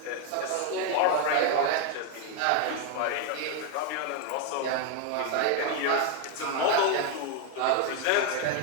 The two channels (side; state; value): both; different; correlation 0.01